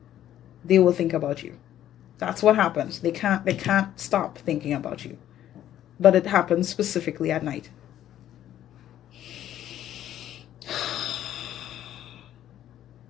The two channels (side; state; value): right; quieter; 11.8 dB